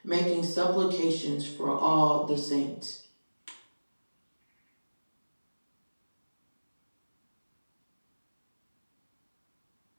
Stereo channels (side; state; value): both; inverted; correlation -1.00